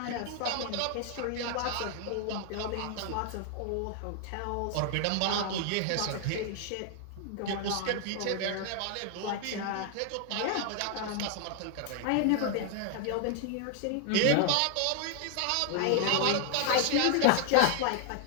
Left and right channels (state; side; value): different; both; correlation 0.00